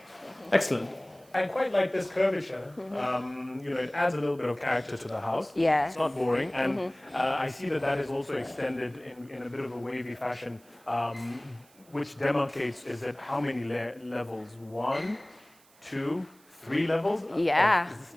Excellent. I quite like this curvature. It adds a little bit of character to the house. Yeah. It's not boring. And I see that is also extended in a bit of a wavy fashion, which demarcates, is it how many levels? 1, 2, 3 levels? Yeah. Is this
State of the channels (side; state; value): right; noise; hiss, 28 dB below the sound